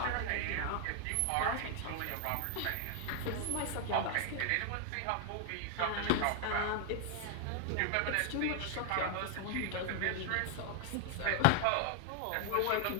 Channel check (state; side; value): different; both; correlation 0.00